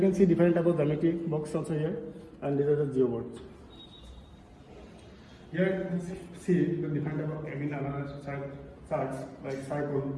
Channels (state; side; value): identical; both; correlation 1.00